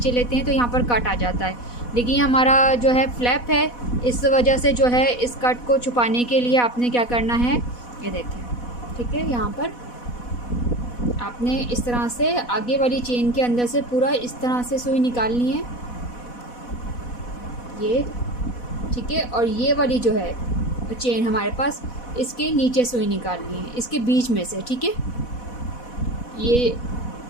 लेते हैं तो यहाँ पर कट आ जाता है, लेकिन हमारा जो है फ्लैप है, इस वजह से जो है इस कट को छुपाने के लिए आपने क्या करना है, ये देखें। ठीक है, यहाँ पर आपने इस तरह से आगे वाली चेन के अंदर से पूरा इस तरह से सुई निकालनी है ये। ठीक है, और ये वाली जो है चेन हमारे पास, इसके नीचे सुई निकालनी है, इसके बीच में से। ठीक है, ये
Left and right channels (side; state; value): right; late; 4.1 ms